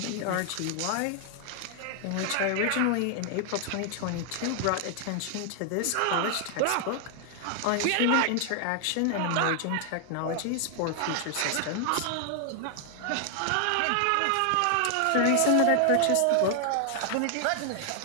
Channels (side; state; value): both; different; correlation 0.00